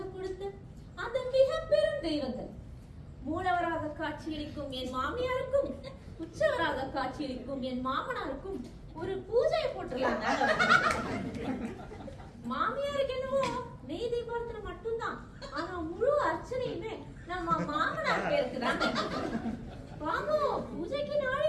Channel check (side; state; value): both; identical; correlation 1.00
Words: கொடுத்த அந்த மிக பெரும் தெய்வங்கள், மூலவராக காட்சியளிக்கும் என் மாமியாருக்கும் உச்சவராக காட்சியளிக்கும் என் மாமனாருக்கும் ஒரு பூஜையை போட்டுருலாங்க. மாமியாருக்கு என்னவோ நெய் தீபாவளி மட்டும்தான், ஆனா முழு அர்ச்சனையுமே நம்ம மாமனார் பேருக்கு தாங்க. வாங்க பூஜைக்கு நாளை